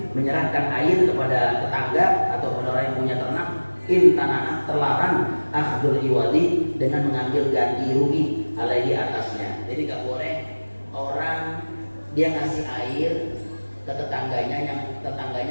menyerahkan air kepada tetangga atau kepada orang yang punya ternak, intanah, terlarang akhdul iwadi, dengan mengambil ganti rugi alaihi, atasnya. Jadi gak boleh orang dia ngasih air ke tetangganya yang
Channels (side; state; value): both; inverted; correlation -1.00